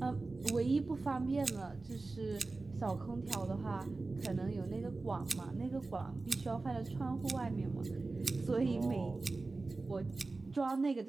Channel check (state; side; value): quieter; left; 3.5 dB